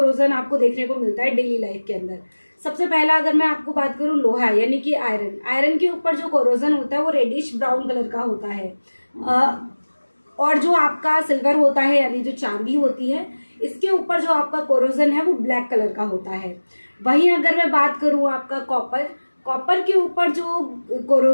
आपको देखने को मिलता है डेली लाइफ के अंदर। सबसे पहला अगर मैं आपको बात करूँ लोहा यानी कि आयरन, आयरन के ऊपर जो कोरोजन होता है वो रेडिश ब्राउन कलर का होता है। और जो आपका सिल्वर होता है यानी जो चांदी होती है, इसके ऊपर जो आपका कोरोजन है वो ब्लैक कलर का होता है। वहीं अगर मैं बात करूँ आपका कॉपर, कॉपर के ऊपर जो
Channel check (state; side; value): inverted; both; correlation -1.00